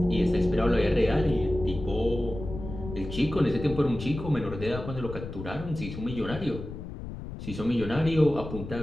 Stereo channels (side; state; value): left; noise; rumble, 9 dB below the sound